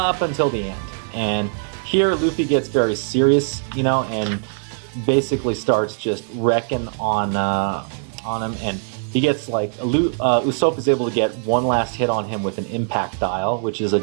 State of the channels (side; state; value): left; silent; digital silence